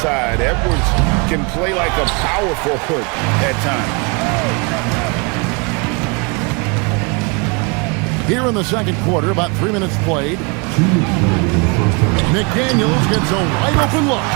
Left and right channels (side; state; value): left; quieter; 31.7 dB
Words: Edwards can play like a power forward at times. Here in the second quarter, about 3 minutes played. McDaniels gets a wide open look.